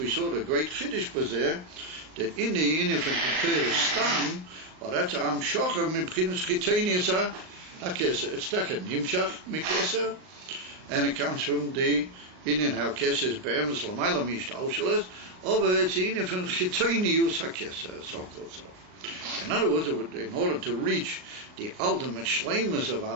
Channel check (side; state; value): left; late; 38 ms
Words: saw the great chiddush bazeh that in the inif and Keter stam, or that's am shocher mibchinas chitenius ha-keser. It's taken nimshach mikeser, and it comes from the inyan ha-keser is be'emes l'mayla mishtaushales, over it's the inif and chitenius ha-keser, so-called so. In other words, in order to reach the ultimate shleimus of